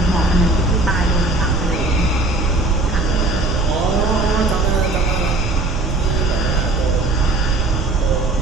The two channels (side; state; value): right; noise; rumble, 2 dB below the sound